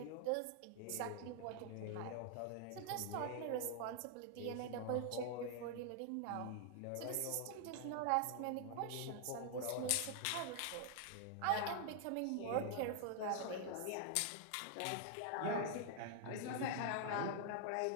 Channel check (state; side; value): different; both; correlation 0.00